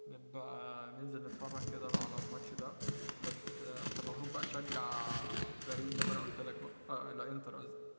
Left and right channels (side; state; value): both; inverted; correlation -1.00